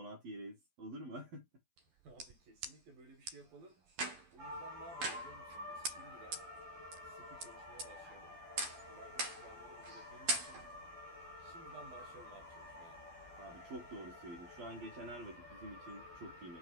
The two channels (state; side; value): late; left; 12 ms